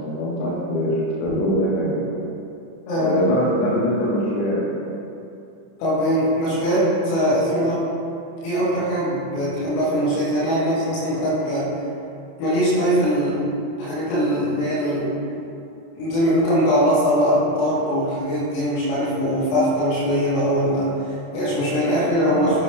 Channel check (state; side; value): late; right; 30 ms